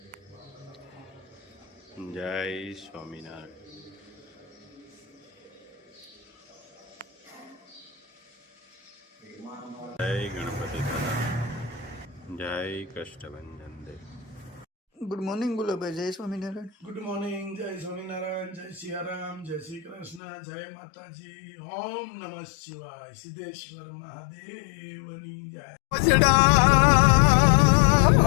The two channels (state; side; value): drops out; right; at 20.2 s